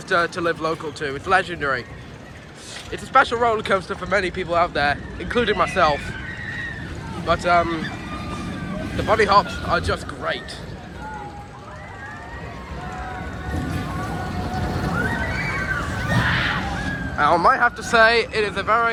to live local to. It's legendary. It's a special roller coaster for many people out there, including myself. But the bunny hops are just great. I might have to say it is a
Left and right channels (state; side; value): identical; both; correlation 1.00